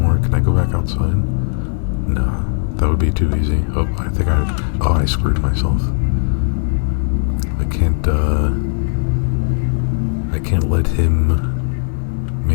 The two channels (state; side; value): silent; right; digital silence